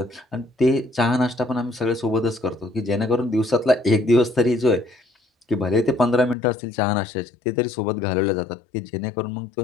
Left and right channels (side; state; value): right; drops out; at 6.4 s